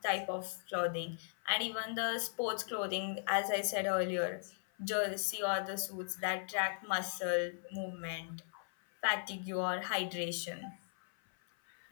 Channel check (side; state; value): right; silent; 52 dB below the other